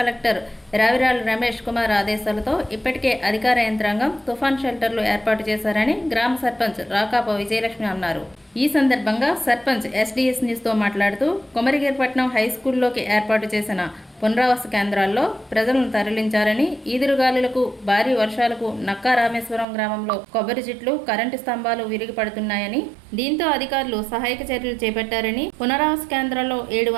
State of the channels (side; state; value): left; drops out; at 19.7 s